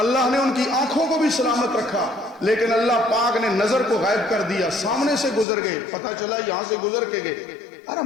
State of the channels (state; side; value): drops out; right; at 5.5 s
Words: نے ان کی آنکھوں کو بھی سلامت رکھا, لیکن اللہ پاک نے نظر کو غائب کر دیا. سامنے سے گزر گئے, پتہ چلا یہاں سے گزر کے گئے. ارے